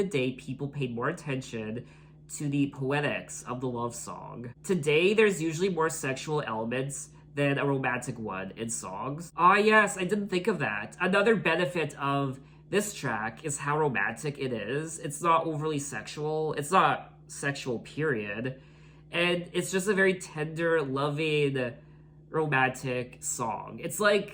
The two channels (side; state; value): both; identical; correlation 1.00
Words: day, people paid more attention to the poetics of the love song. Today, there's usually more sexual elements than a romantic one in songs." Ah yes, I didn't think of that. Another benefit of this track is how romantic it is. It's not overly sexual. It's not sexual, period. And it's just a very tender, loving, romantic song. It's